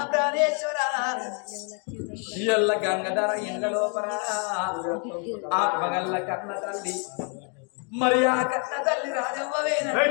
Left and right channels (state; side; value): quieter; right; 39.9 dB